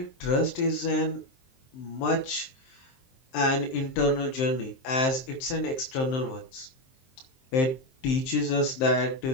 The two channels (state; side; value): late; right; 23 ms